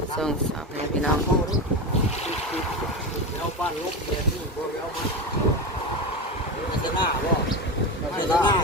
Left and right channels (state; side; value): normal; both; correlation 0.20